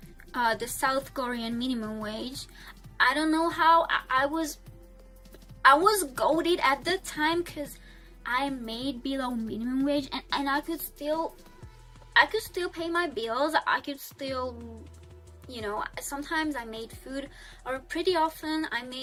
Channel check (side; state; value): both; identical; correlation 1.00